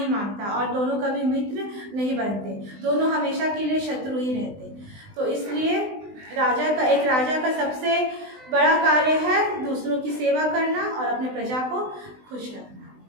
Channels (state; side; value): late; left; 20 ms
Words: मांगता और दोनों कभी मित्र नहीं बनते, दोनों हमेशा के लिए शत्रु ही रहते। तो इसलिए एक राजा का सबसे बड़ा कार्य है दूसरों की सेवा करना और अपने प्रजा को खुश रखना।